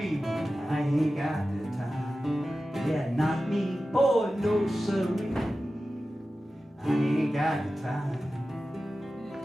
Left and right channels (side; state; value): both; normal; correlation 0.94